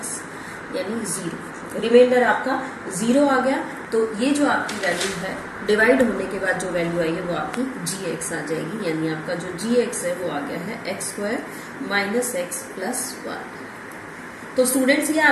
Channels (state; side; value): identical; both; correlation 1.00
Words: यानी 0, रिमाइंडर आपका 0 आ गया। तो ये जो आपकी वैल्यू है डिवाइड होने के बाद जो वैल्यू आई है वो आपकी gx आ जाएगी, यानी आपका जो gx है वो आ गया है x square minus x plus 1। तो स्टूडेंट्स ये